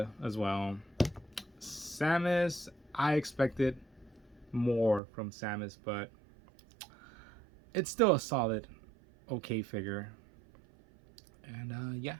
as well. Samus, I expected more from Samus, but it's still a solid, okay figure. And yeah,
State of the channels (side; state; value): left; drops out; at 5.0 s